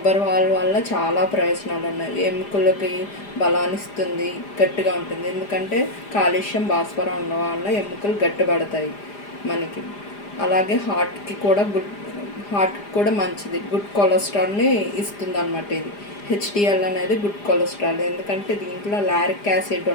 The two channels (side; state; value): right; late; 4.9 ms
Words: పాలు వల్ల చాలా ప్రయోజనాలు ఉన్నాయి. ఎముకలకి బలాన్నిస్తుంది, గట్టిగా ఉంటుంది. ఎందుకంటే కాల్షియం, భాస్వరం ఉండడం వల్ల ఎముకలు గట్టిపడతాయి మనకి. అలాగే హార్ట్కి కూడా మంచిది. గుడ్ కొలెస్ట్రాల్ని ఇస్తుంది అన్నమాట. ఇది హెచ్డిఎల్ అనేది గుడ్ కొలెస్ట్రాల్. ఎందుకంటే దీంట్లో లారిక్ యాసిడ్